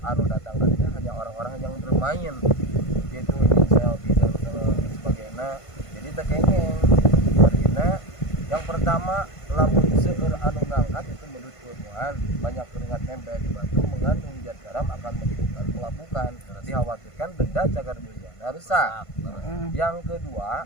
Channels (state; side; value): late; right; 1.5 ms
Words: anu datang ke sini hanya orang-orang yang bermain gitu ingin selfie dan sebagainya. Jadi teh kengeng. Artinya yang pertama lamun seueur anu ngangkat itu menurut ilmuwan banyak keringat nempel di batu mengandung zat garam akan menimbulkan pelapukan. Dikhawatirkan benda cagar biologina rusak. Yang kedua,